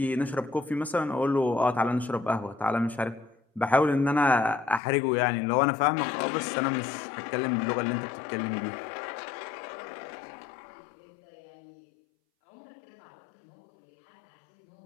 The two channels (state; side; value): drops out; right; at 4.8 s